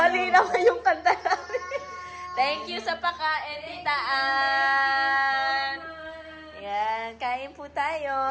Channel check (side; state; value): both; identical; correlation 1.00